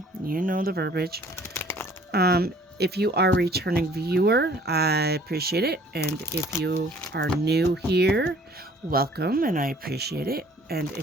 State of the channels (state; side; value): normal; both; correlation 0.54